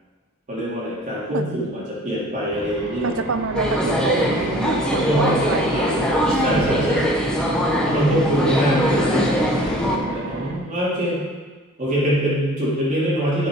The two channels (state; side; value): normal; both; correlation 0.48